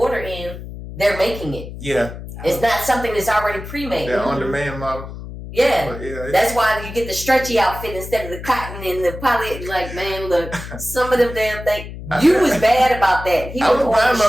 in, they're making it. Yeah. It's not something that's already pre-made. They're on-demand model. Yeah. That's why you get the stretchy outfit instead of the cotton and the poly. Like, man, look, some of them damn things. You was bad about that. He I was buying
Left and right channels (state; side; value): noise; left; hum, 11 dB below the sound